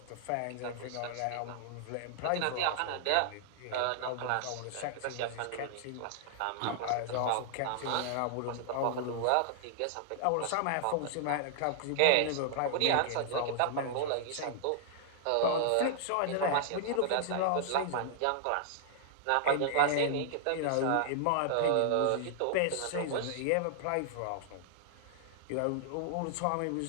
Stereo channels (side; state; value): both; different; correlation -0.01